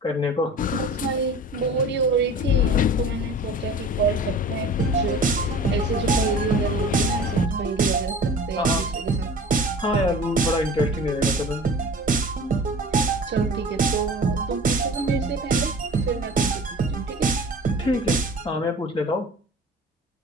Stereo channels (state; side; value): normal; both; correlation 0.40